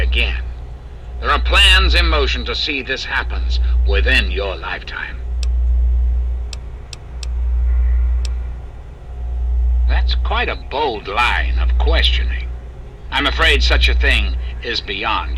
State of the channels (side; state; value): both; identical; correlation 1.00